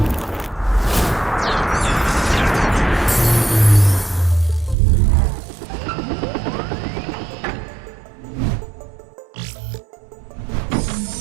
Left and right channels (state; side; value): drops out; left; at 4.8 s